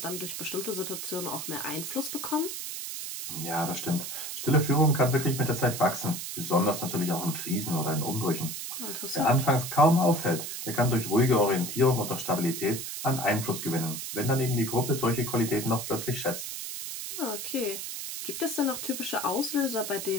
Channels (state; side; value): noise; right; hiss, 6 dB below the sound